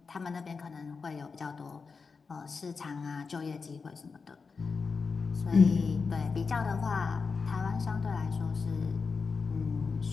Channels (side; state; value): right; quieter; 4.9 dB